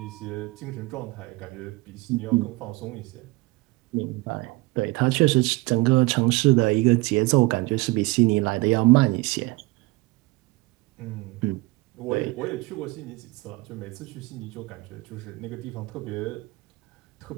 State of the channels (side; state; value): left; quieter; 22.7 dB